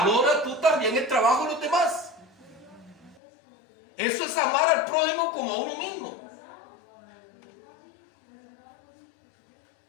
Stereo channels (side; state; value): right; drops out; at 3.2 s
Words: tú también el trabajo de los demás. Eso es amar al prójimo como a uno mismo.